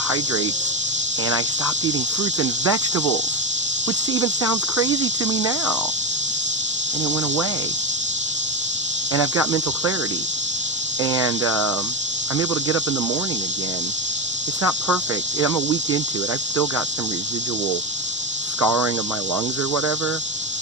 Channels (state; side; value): normal; both; correlation 0.14